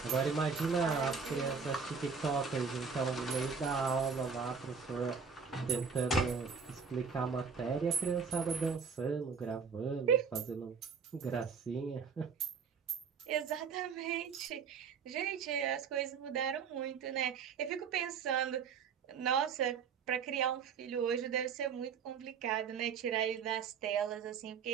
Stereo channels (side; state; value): left; quieter; 6.0 dB